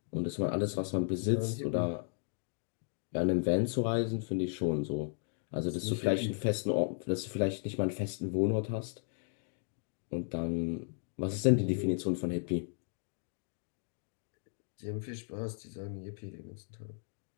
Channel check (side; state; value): right; silent; digital silence